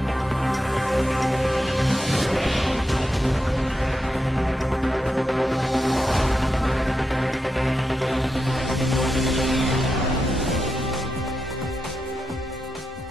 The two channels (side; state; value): both; normal; correlation 0.87